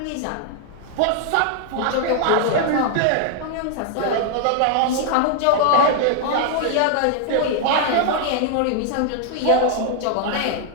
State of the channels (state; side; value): different; both; correlation 0.00